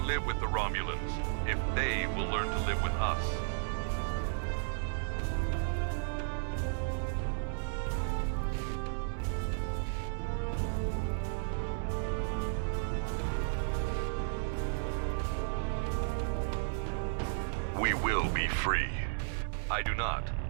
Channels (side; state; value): left; silent; 55 dB below the other